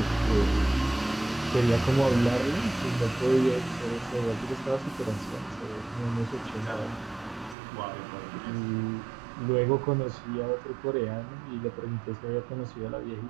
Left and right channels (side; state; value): left; drops out; at 7.6 s